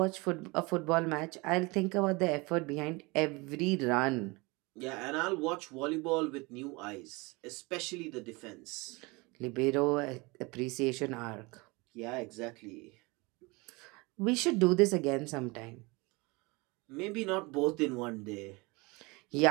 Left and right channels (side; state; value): left; quieter; 25.7 dB